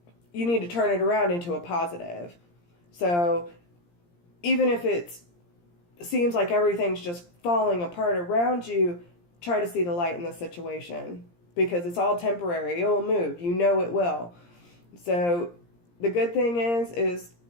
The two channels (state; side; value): late; right; 17 ms